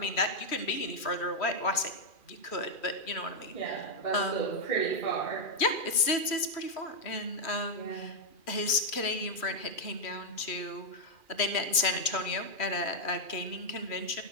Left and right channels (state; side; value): late; right; 2.4 ms